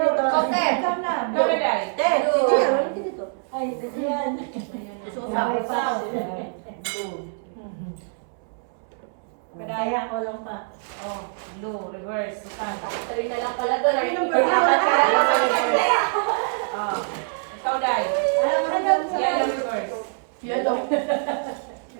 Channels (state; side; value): silent; left; 62 dB below the other